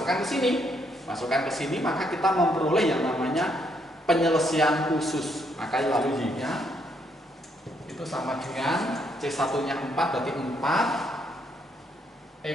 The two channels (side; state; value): both; normal; correlation 0.73